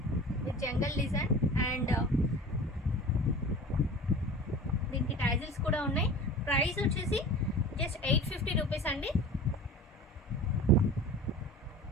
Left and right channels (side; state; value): both; normal; correlation 0.37